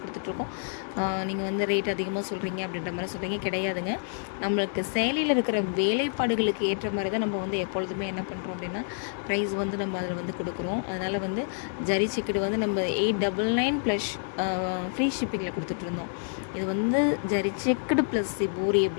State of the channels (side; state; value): right; silent; digital silence